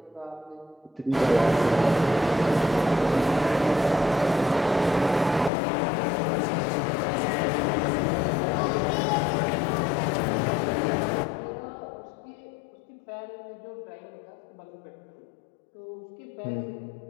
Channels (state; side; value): drops out; right; at 5.5 s